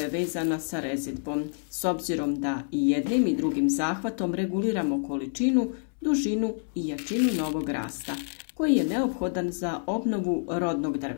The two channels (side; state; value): right; silent; 60 dB below the other